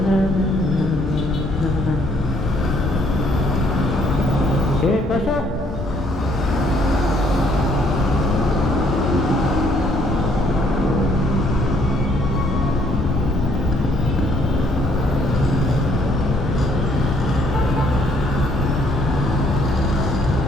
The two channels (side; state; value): both; normal; correlation 0.66